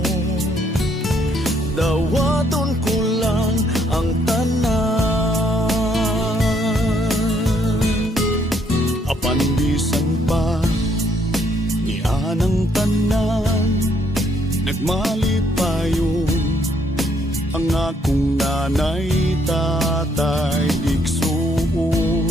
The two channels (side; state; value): both; normal; correlation 0.69